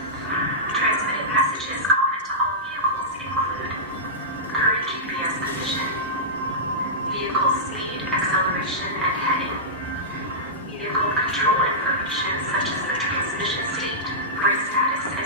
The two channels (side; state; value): both; normal; correlation -0.15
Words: Transmitted messages common to all vehicles include current GPS position, vehicle speed, acceleration, and heading, vehicle control information such as the transmission state, brake status, and